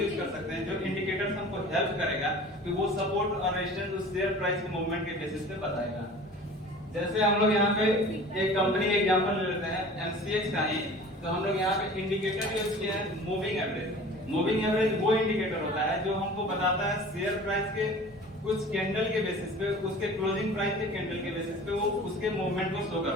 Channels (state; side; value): normal; both; correlation 0.42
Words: कर सकते हैं, जो इंडिकेटर्स हमको हेल्प करेगा कि वो सपोर्ट और रेजिस्टेंस उस शेयर प्राइस के मूवमेंट के बेसिस पे बताएगा। जैसे हम लोग यहाँ पे एक कंपनी का एग्जांपल ले लेते हैं एमसीएक्स का ही। तो हम लोग यहाँ पे इंडिकेटर यूज किया है मूविंग एवरेज। मूविंग एवरेज वो इंडिकेटर होता है जो हमको बताता है शेयर प्राइस के कुछ कैंडल के बेसिस पे, उसके क्लोजिंग प्राइस के कैंडल के बेसिस पे वो उसके मूवमेंट को शो